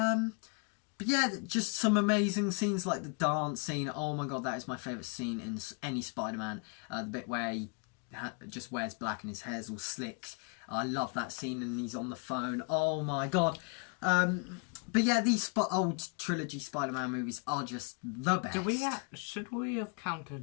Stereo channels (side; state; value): right; quieter; 36.4 dB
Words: yeah, just some amazing scenes like the dance scene. Oh my god, that is my favourite scene in any Spider-Man. The bit where he just wears black and his hair's all slicked. I love that scene, and he's on the phone. Oh my god. But yeah, these old trilogy Spider-Man movies are just the best. Should we have